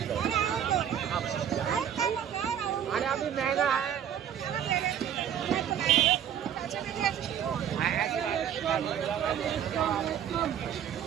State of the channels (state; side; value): quieter; left; 9.5 dB